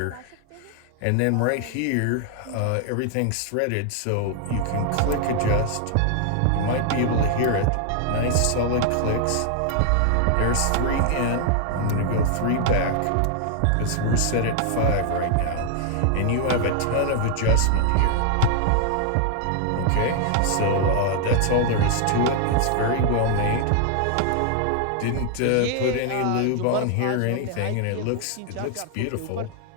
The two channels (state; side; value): different; both; correlation 0.00